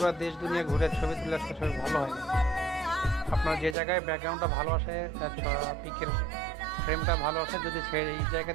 দেশ দুনিয়া ঘুরে ছবি তুলে আসলে ছবি ভালো হয় না। আপনার যে জায়গায় ব্যাকগ্রাউন্ডটা ভালো আসে, পিকের ফ্রেমটা ভালো আসে, যদি এই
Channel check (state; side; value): drops out; left; at 3.8 s